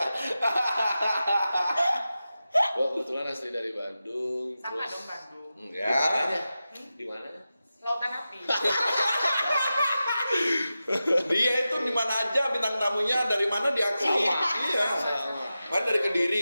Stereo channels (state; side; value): inverted; both; correlation -0.93